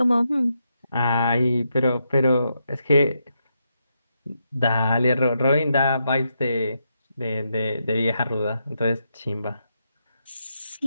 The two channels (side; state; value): both; inverted; correlation -0.82